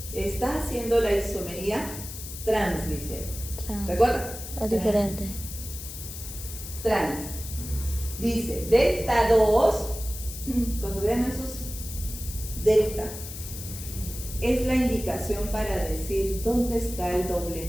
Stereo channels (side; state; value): left; noise; hiss, 10 dB below the sound